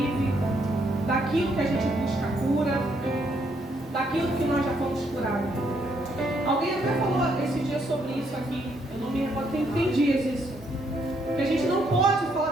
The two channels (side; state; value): both; normal; correlation 0.73